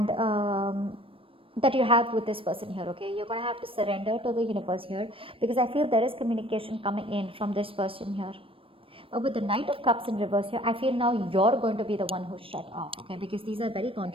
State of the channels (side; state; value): left; late; 0.26 ms